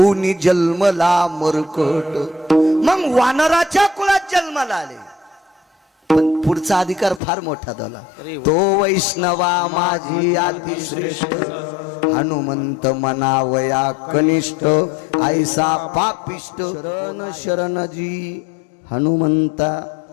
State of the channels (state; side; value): drops out; right; at 7.2 s